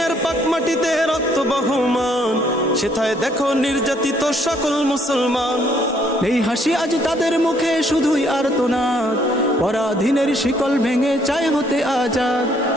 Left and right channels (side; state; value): both; normal; correlation 0.67